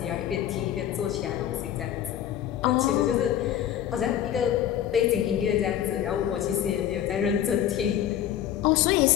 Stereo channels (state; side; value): quieter; right; 10.9 dB